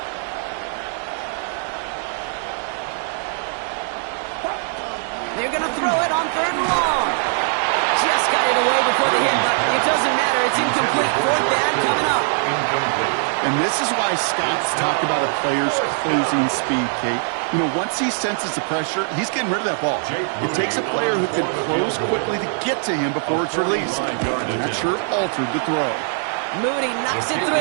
They're going to throw it on 3rd and long. Just got it away before the hit, but it doesn't matter. It's incomplete. 4th down coming up. And this is why Scott's talked about a player's closing speed, Kate. You know, once he senses the pressure, he's getting rid of that ball. It takes a player who can close quickly to get to him before it's released. And that sure altered the throw. Moody knocks it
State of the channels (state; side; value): silent; left; 65 dB below the other